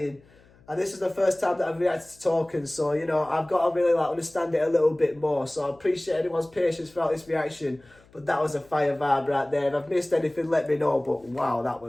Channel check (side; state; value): left; noise; hum, 28 dB below the sound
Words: And this is the first time that I've reacted to talking, so, you know, I've got to really understand it a little bit more. So I appreciate anyone's patience throughout this reaction, but that was a fire vibe right there. If I've missed anything, let me know, but wow, that